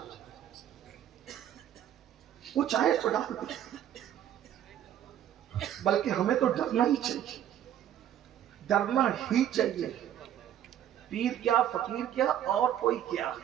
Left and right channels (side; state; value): left; quieter; 10.8 dB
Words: وہ چاہے تو ڈال دے۔ بلکہ ہمیں تو ڈرنا ہی چاہیے، ڈرنا ہی چاہیے۔ پیر کیا، فقیر کیا، اور کوئی کیا،